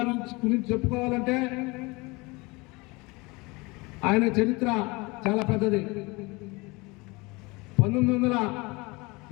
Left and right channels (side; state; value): right; quieter; 25.2 dB